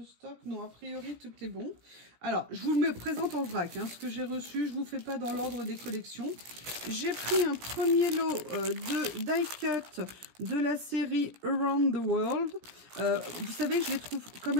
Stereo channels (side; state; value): left; late; 17 ms